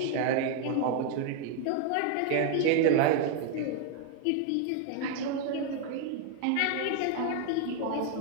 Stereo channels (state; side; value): different; both; correlation 0.00